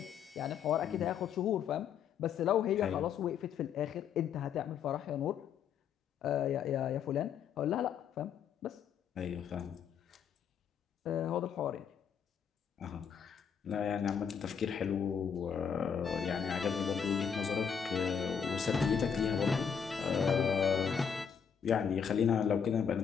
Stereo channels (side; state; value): right; quieter; 7.4 dB